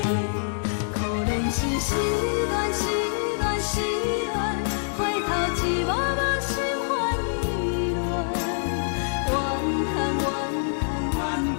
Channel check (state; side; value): silent; right; digital silence